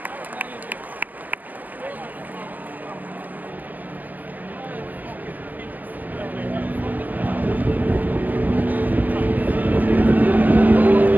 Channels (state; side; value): late; left; 0.083 ms